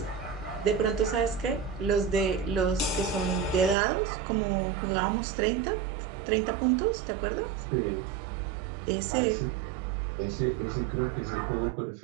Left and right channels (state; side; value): drops out; left; at 3.8 s